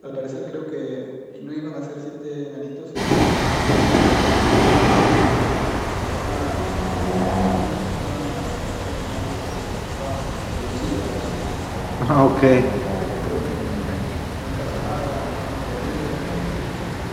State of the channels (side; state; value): both; identical; correlation 1.00